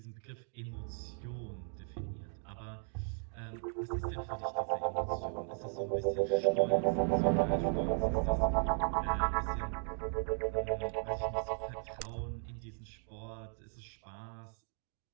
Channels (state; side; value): silent; left; 53 dB below the other